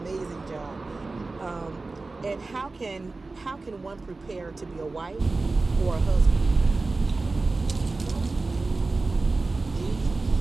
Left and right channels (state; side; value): quieter; left; 3.5 dB